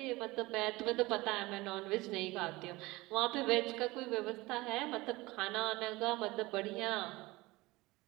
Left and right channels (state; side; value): quieter; left; 21.0 dB